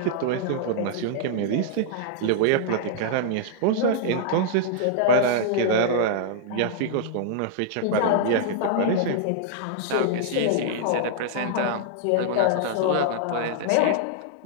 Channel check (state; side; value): different; both; correlation -0.01